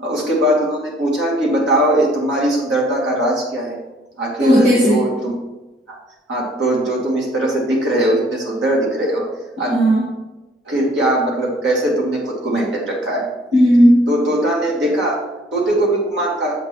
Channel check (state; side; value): normal; both; correlation 0.60